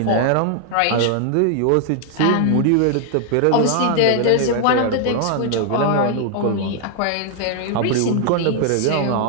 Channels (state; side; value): different; both; correlation 0.00